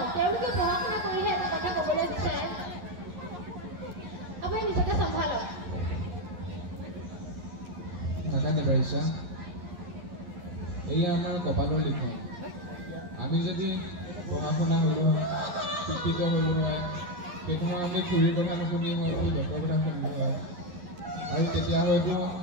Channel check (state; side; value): late; left; 11 ms